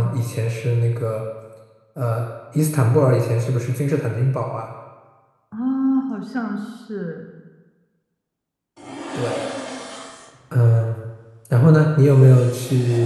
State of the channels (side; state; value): both; identical; correlation 1.00